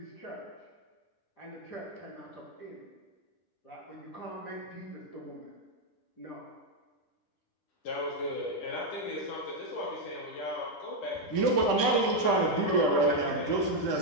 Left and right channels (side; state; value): right; late; 10 ms